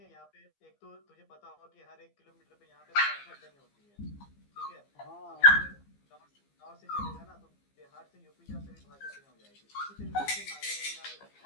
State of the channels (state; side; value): late; right; 15 ms